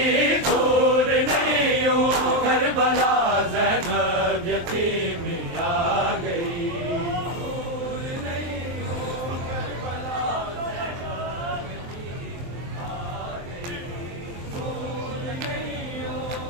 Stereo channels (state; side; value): late; left; 23 ms